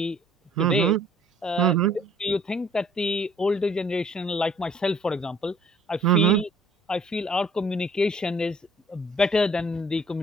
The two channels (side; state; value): both; normal; correlation 0.58